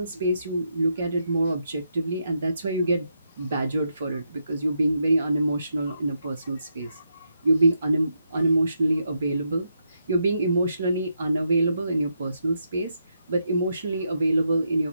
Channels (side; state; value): both; inverted; correlation -0.81